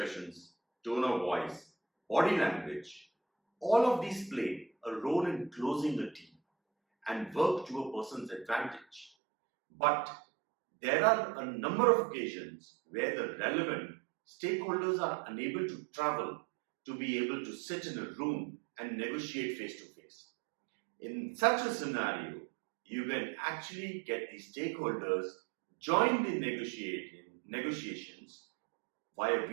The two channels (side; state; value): left; drops out; at 9.1 s